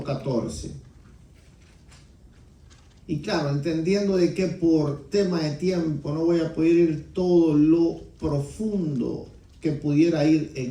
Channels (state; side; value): identical; both; correlation 1.00